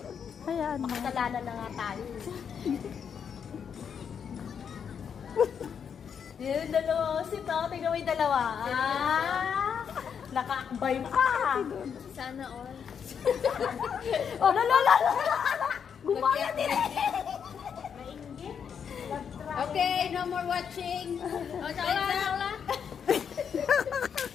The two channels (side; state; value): right; quieter; 7.3 dB